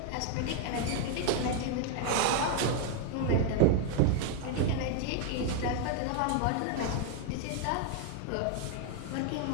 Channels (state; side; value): different; both; correlation 0.00